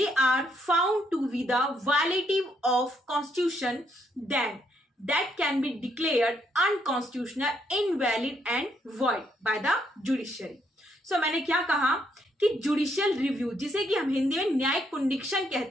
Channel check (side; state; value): both; normal; correlation 0.74